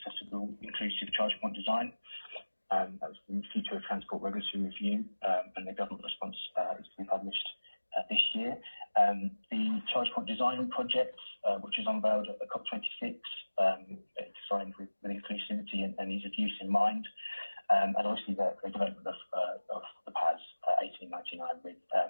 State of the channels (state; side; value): inverted; both; correlation -1.00